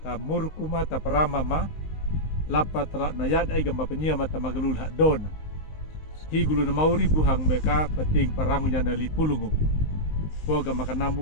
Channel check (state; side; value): late; right; 19 ms